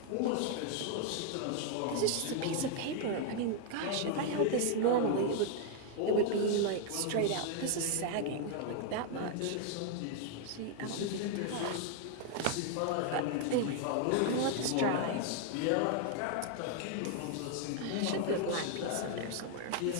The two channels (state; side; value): different; both; correlation 0.00